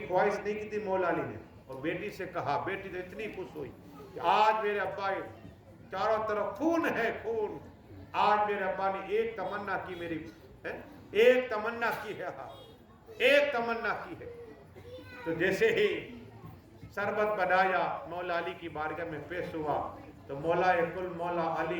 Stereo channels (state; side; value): identical; both; correlation 1.00